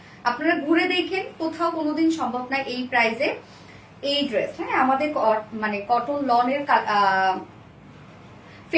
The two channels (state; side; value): identical; both; correlation 1.00